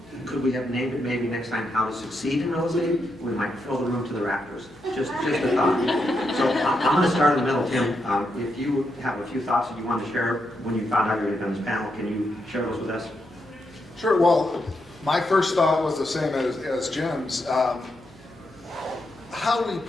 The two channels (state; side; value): noise; left; hum, 28 dB below the sound